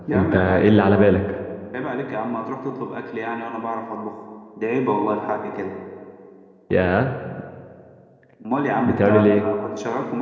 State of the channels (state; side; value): identical; both; correlation 1.00